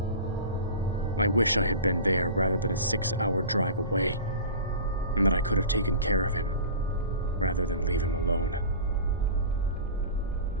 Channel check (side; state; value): both; inverted; correlation -0.35